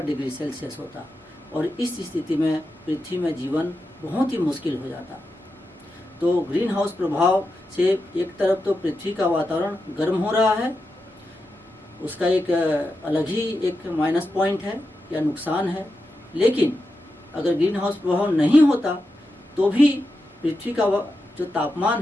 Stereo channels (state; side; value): normal; both; correlation 0.88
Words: डिग्री सेल्सियस होता, और इस स्थिति में पृथ्वी में जीवन बहुत ही मुश्किल हो जाता। तो ग्रीन हाउस प्रभाव से एक तरफ तो पृथ्वी का वातावरण गर्म हो रहा है, उसका एक अलग ही एक माइनस पॉइंट है या नुकसान है, लेकिन अगर ग्रीन हाउस प्रभाव नहीं होता तो भी पृथ्वी का जो